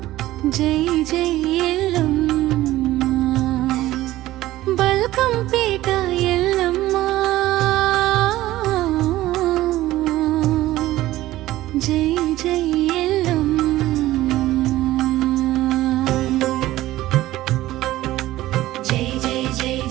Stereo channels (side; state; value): left; quieter; 15.9 dB